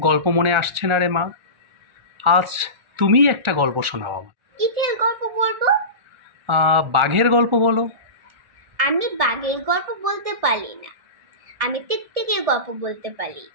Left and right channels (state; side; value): late; left; 1.4 ms